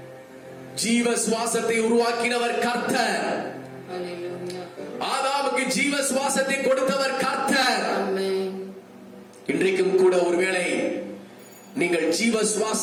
ஜீவ சுவாசத்தை உருவாக்கினவர் கர்த்தர். ஆதாமுக்கு ஜீவ சுவாசத்தை கொடுத்தவர் கர்த்தர். இன்றைக்கும் கூட ஒருவேளை நீங்கள் ஜீவ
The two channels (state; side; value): identical; both; correlation 1.00